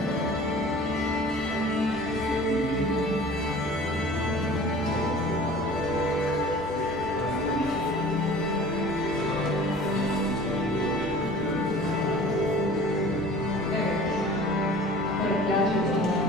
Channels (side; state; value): both; normal; correlation 0.44